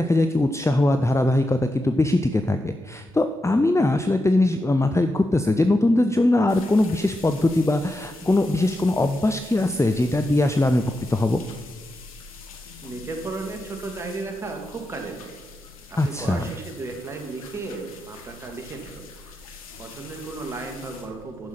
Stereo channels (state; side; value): normal; both; correlation 0.88